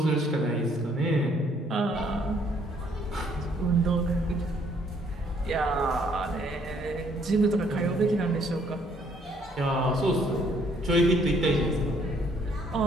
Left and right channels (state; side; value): normal; both; correlation 0.65